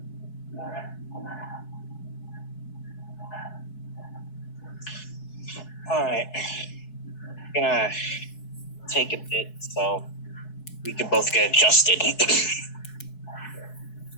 All right. Gonna take a bit so we can both get adjusted.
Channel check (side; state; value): right; late; 4.7 ms